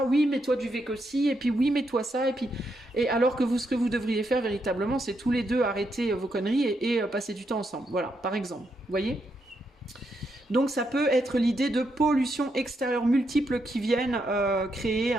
oui mais toi tu fais que ci, et puis oui mais toi ça, et alors que ce que vous devriez faire véritablement c'est tous les deux arrêter vos conneries et passer du temps ensemble, voilà, par exemple, vous voyez. Donc ça peut être l'idée de pollution extérieure multiples qui viennent créer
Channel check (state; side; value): normal; both; correlation 0.80